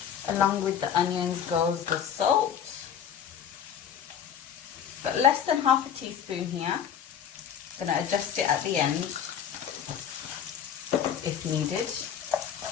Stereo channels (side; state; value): right; quieter; 8.7 dB